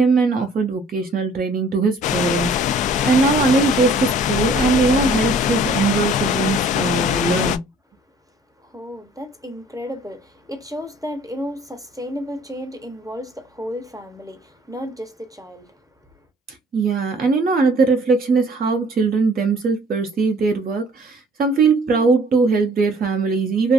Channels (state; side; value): normal; both; correlation 0.55